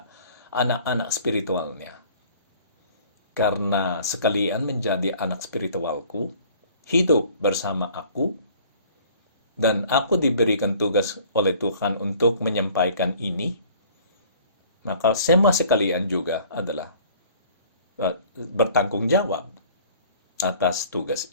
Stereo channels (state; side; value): inverted; both; correlation -0.52